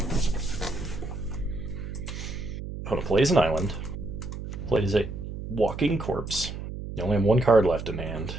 Opponent plays an island. Plays a walking corpse. You only have one card left in hand.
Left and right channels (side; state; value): right; noise; hum, 8 dB below the sound